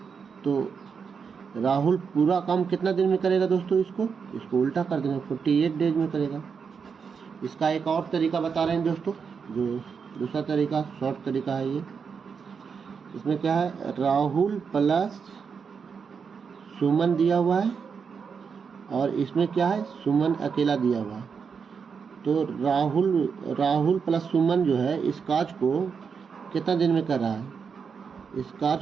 तो राहुल पूरा काम कितना दिन में करेगा दोस्तों, इसको उल्टा कर देंगे, 48 डेज में करेगा। इसका एक और तरीका बता रहे हैं दोस्तों, जो दूसरा तरीका शॉर्ट तरीका है ये। इसमें क्या है, राहुल प्लस सुमन दिया हुआ है और इसमें क्या है, सुमन अकेला दिया हुआ है। तो राहुल प्लस सुमन जो है इस कार्य को कितना दिन में कर रहा है, इस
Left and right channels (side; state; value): left; quieter; 6.1 dB